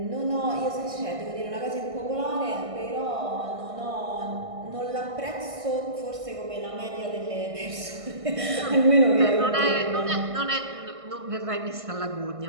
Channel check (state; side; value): late; left; 1.6 ms